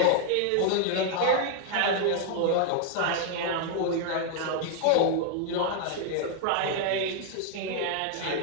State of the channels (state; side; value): different; both; correlation 0.00